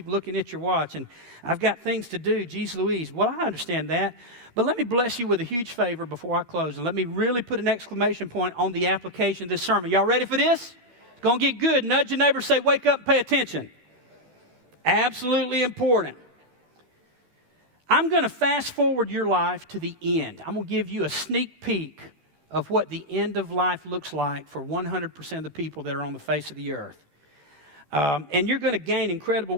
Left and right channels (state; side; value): late; left; 12 ms